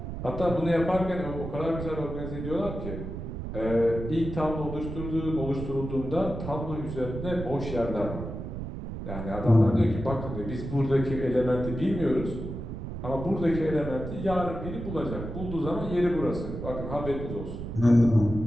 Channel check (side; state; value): right; noise; rumble, 7 dB below the sound